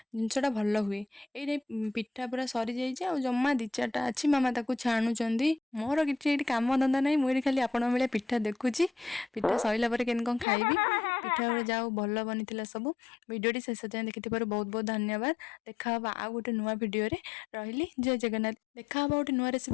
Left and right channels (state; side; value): drops out; right; at 10.5 s